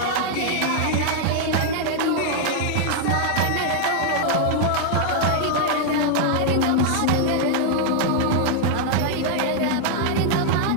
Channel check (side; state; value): both; different; correlation 0.00